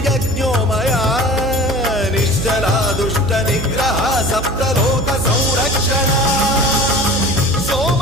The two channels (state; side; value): noise; right; hum, 8 dB below the sound